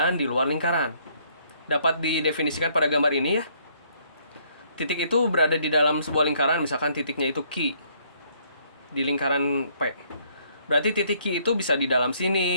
di luar lingkaran. Dapat didefinisikan pada gambar ini ya. Titik itu berada di dalam sebuah lingkaran, misalkan titiknya itu Q di lingkaran P. Berarti titik Q itu bisa di dalam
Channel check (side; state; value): both; inverted; correlation -0.66